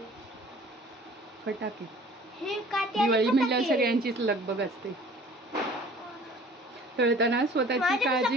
फटाके. हे काठी दिवाळी म्हणल्यावर सगळ्यांचीच लगबग असते. तळताना स्वतःची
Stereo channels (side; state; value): both; normal; correlation 0.50